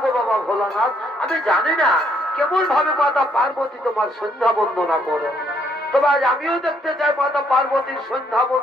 গো বাবা ভোলানাথ, আমি জানি না কেমন ভাবে মাতা পার্বতী তোমার সন্ধ্যা বন্দনা করে। তবে আজ আমিও দেখতে চাই মাতা পার্বতীর সন্ধ্যা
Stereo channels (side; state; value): both; normal; correlation 0.69